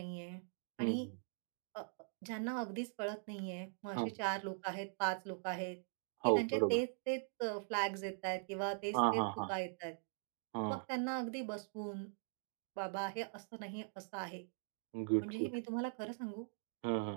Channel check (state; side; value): silent; left; digital silence